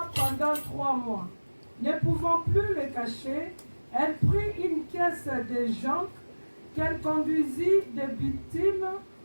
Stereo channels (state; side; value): inverted; both; correlation -1.00